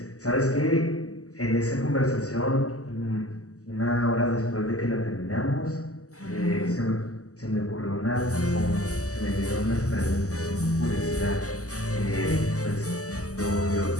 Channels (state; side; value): late; right; 0.66 ms